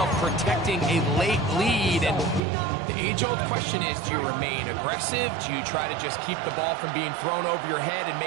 protecting a late lead, and the age-old question is, do you remain aggressive? Do you try to just keep the ball from being thrown over your head and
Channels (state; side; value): drops out; left; at 2.4 s